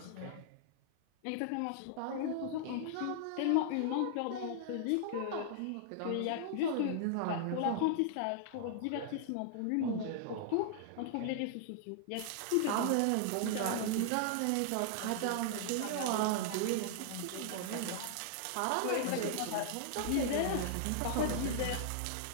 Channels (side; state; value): both; different; correlation -0.01